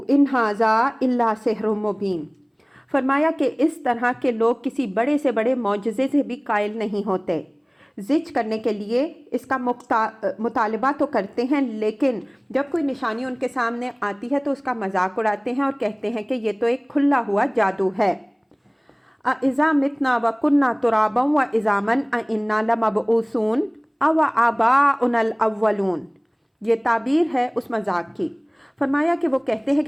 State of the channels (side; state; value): both; identical; correlation 1.00